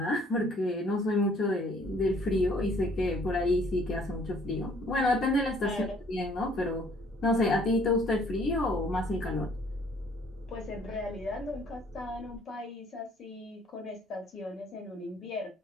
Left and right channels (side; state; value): both; normal; correlation 0.60